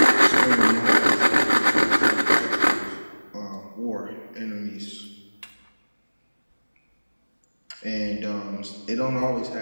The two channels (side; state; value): both; inverted; correlation -1.00